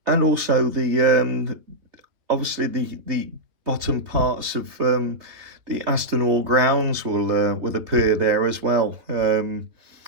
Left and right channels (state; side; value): late; left; 3.4 ms